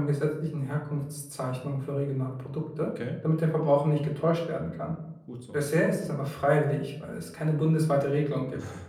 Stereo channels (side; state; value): both; identical; correlation 1.00